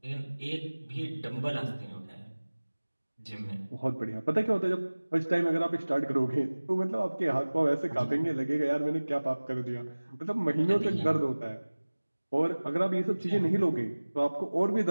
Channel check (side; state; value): both; inverted; correlation -1.00